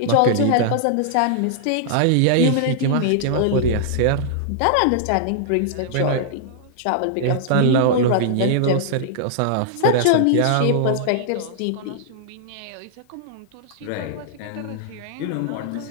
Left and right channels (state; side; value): different; both; correlation -0.01